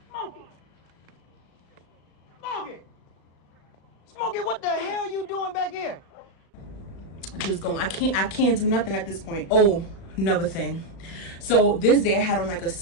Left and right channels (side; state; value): right; late; 36 ms